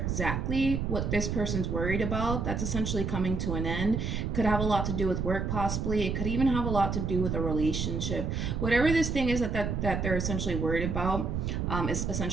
what this person's worried about. That's essentially coming to an end. Could have a lot to do with work, possibly. It could even have a lot to do with a relationship. Whatever this thing is that they're essentially worried about is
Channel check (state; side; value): noise; right; rumble, 1 dB below the sound